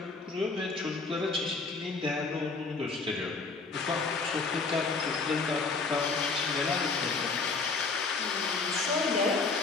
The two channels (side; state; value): right; quieter; 4.2 dB